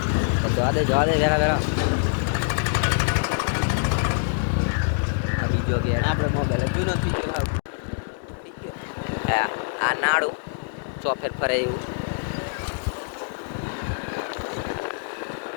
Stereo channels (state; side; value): silent; right; digital silence